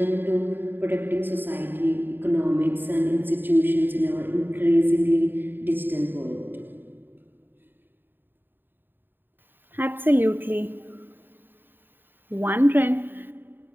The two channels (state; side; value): late; left; 0.094 ms